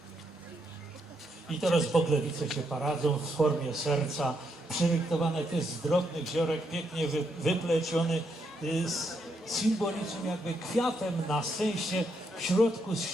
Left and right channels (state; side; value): normal; both; correlation 0.78